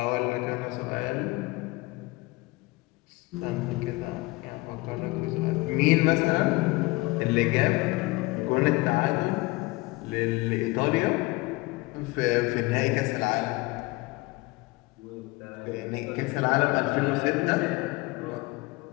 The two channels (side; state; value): right; quieter; 22.5 dB